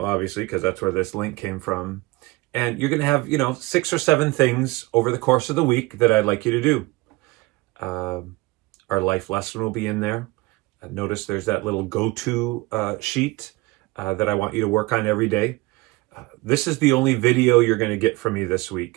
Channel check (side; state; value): left; quieter; 22.2 dB